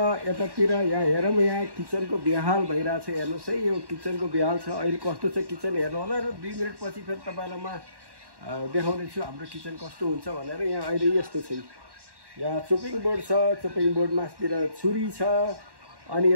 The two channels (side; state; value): left; late; 1.1 ms